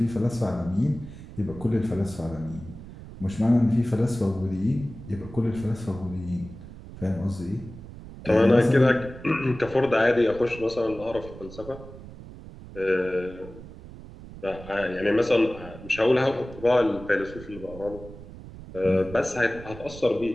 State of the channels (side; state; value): right; noise; rumble, 15 dB below the sound